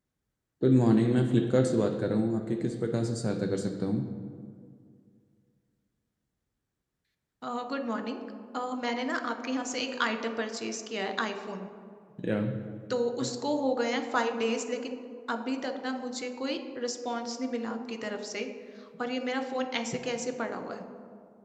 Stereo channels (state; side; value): identical; both; correlation 1.00